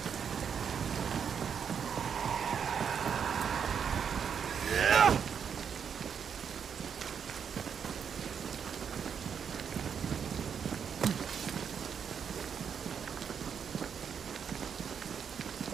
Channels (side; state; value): left; quieter; 7.3 dB